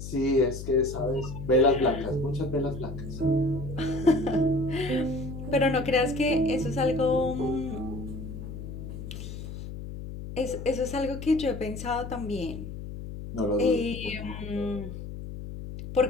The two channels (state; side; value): noise; left; hum, 9 dB below the sound